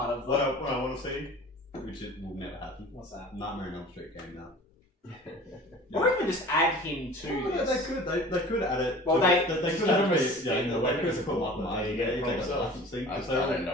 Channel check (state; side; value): normal; both; correlation 0.42